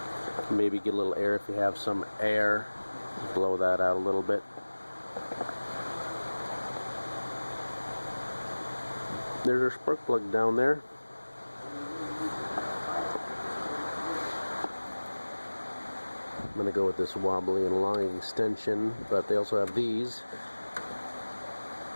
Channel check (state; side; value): inverted; both; correlation -1.00